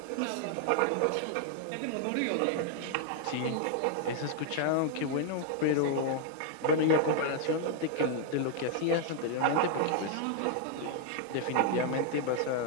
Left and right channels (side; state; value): both; different; correlation 0.00